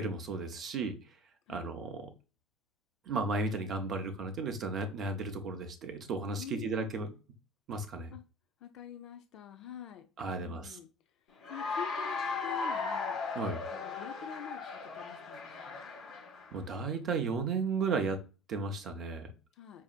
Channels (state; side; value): normal; both; correlation 0.41